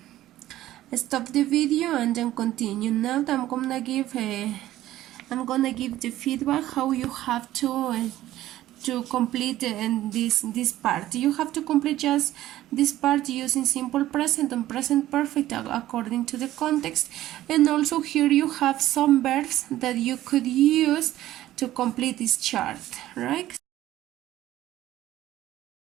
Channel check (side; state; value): left; quieter; 14.4 dB